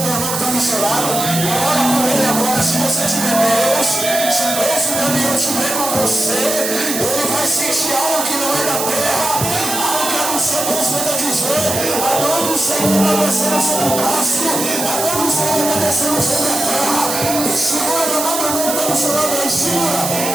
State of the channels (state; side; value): noise; right; hiss, 3 dB below the sound